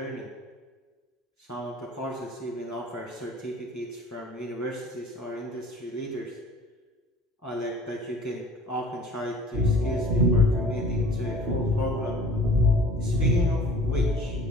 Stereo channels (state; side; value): normal; both; correlation 0.47